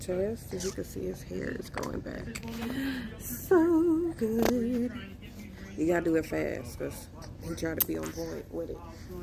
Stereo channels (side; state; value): both; identical; correlation 1.00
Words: As you can see, his hair is growing back so good. You gotta do it fast because he tried to be on point with it.